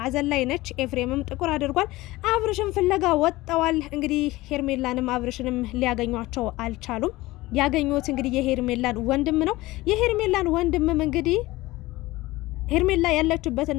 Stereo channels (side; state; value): right; quieter; 19.0 dB